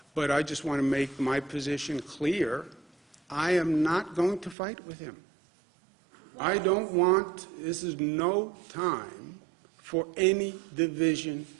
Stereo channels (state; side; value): drops out; left; at 4.5 s